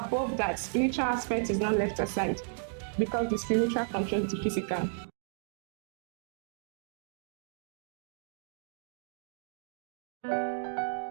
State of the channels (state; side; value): silent; left; digital silence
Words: that, spiritual aspect is not left aside because the spiritual controls the physical.